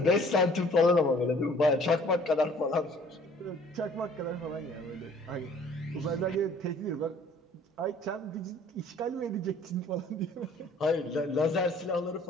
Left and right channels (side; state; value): both; normal; correlation 0.54